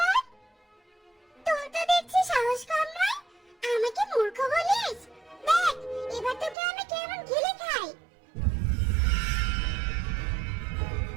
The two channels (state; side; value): drops out; left; at 6.6 s